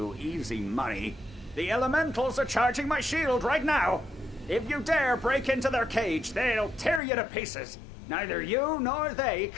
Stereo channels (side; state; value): right; drops out; at 7.0 s